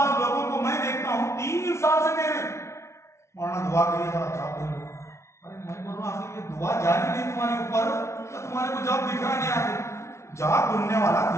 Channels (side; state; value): right; late; 0.13 ms